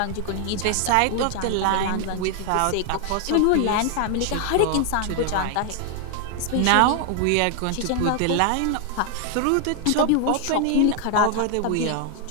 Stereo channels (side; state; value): both; different; correlation 0.00